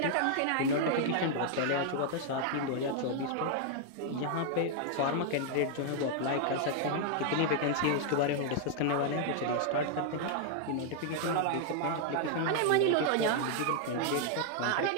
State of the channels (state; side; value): different; both; correlation 0.00